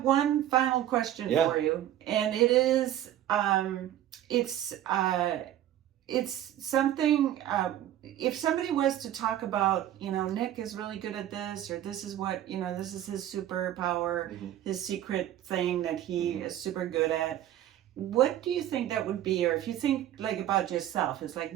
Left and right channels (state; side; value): quieter; left; 12.2 dB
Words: one final question for you, and it is, it's something, if somebody was to talk about, Nick is really good at this, or this is what, this is his superpower, his secret thing that he is super good at, what do you think that would be? Or if you think about yourself, it's